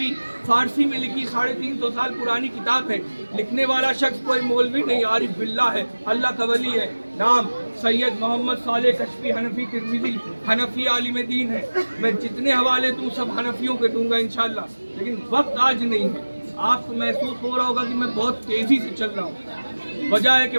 फारसी में लिखी, 350 साल पुरानी किताब है। लिखने वाला शख्स कोई मौलवी नहीं, आरिफ बिल्ला है, अल्लाह का वली है। नाम सैयद मोहम्मद साले कश्फी हनफी तिरमिज़ी, हनफी आलिम दीन है। मैं जितने हवाले दूँ सब हनफियों के दूंगा इंशाल्लाह, लेकिन वक्त आज नहीं है। आपको महसूस हो रहा होगा कि मैं बहुत तेज़ी से चल रहा हूँ, वजह है कि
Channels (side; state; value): both; inverted; correlation -1.00